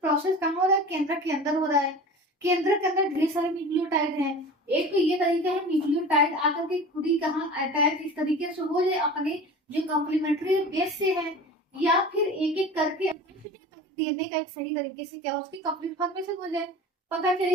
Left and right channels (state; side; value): normal; both; correlation 0.37